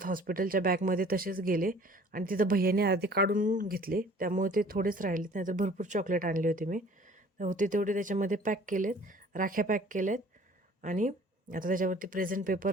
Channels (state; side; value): normal; both; correlation 0.51